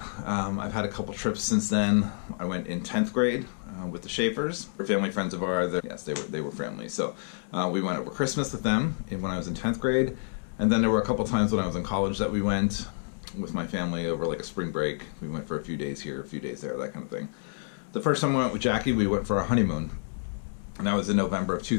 I've had a couple trips since then. I went in 10th grade with the Schaefers. They're family friends of ours. Yes, they were family. So we went over Christmas with them when I was in 10th grade. And then there were a couple times when I was in college that we went with my family over like a spring break. We went for a few days here, a few days there, that kind of thing. The first time I went with Jackie, we went for our honeymoon. And that was in November of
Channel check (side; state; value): right; silent; 59 dB below the other